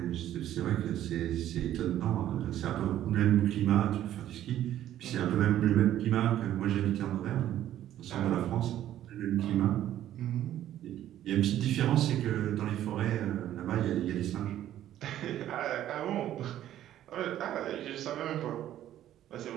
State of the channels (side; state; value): left; quieter; 12.2 dB